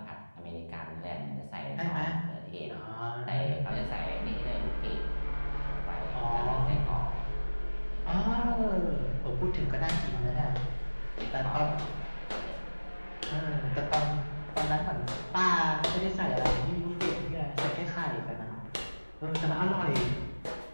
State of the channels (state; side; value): inverted; both; correlation -1.00